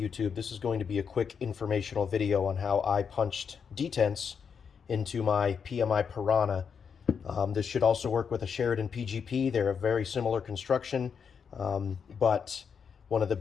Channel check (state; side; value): quieter; right; 6.6 dB